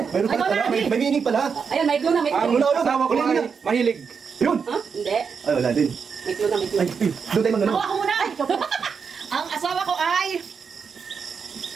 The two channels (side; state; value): left; quieter; 6.0 dB